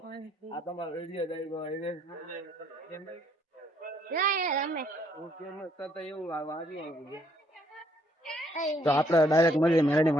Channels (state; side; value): normal; both; correlation 0.68